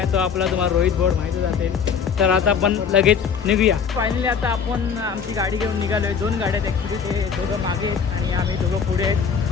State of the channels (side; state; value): right; quieter; 6.5 dB